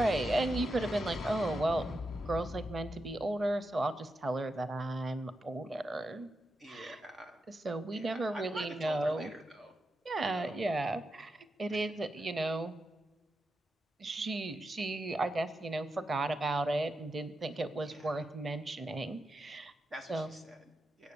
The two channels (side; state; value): both; normal; correlation 0.87